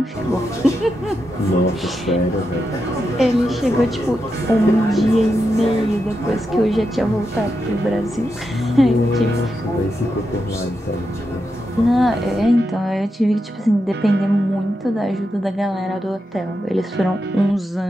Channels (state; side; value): normal; both; correlation 0.86